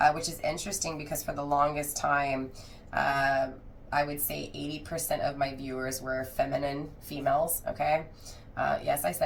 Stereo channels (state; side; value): identical; both; correlation 1.00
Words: which is interesting because for the longest time, I would say 80% of my viewers were feminine females, okay? Yes, I